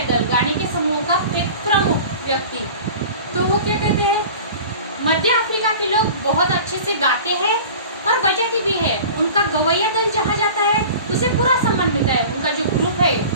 दल, गाने के समूह का एक प्रमुख व्यक्ति। तो वो क्या कहते हैं, मध्य अफ्रीका के लोग बहुत अच्छे से गाते हैं और बजाते भी है। उनका गवैया दल जहाँ जाता है उसे पूरा सम्मान मिलता है। उनका जो ग्रुप है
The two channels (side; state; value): both; inverted; correlation -0.39